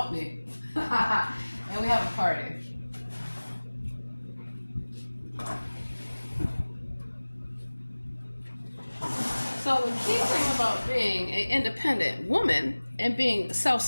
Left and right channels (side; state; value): both; inverted; correlation -1.00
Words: me. And we have a party. So the key thing about being an independent woman and being